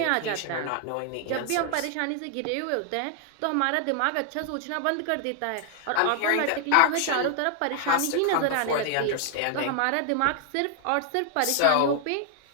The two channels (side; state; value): both; different; correlation 0.00